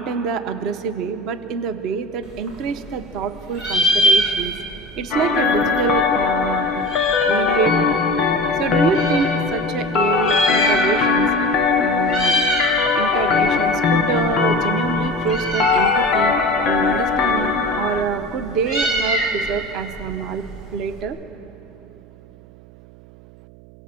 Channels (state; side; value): noise; right; hum, 23 dB below the sound